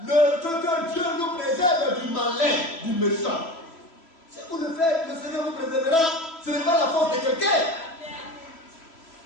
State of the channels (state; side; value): late; right; 3.0 ms